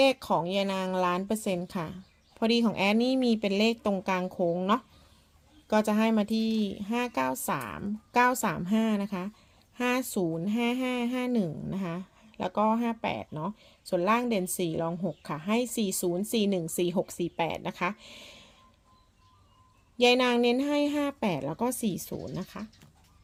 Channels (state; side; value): identical; both; correlation 1.00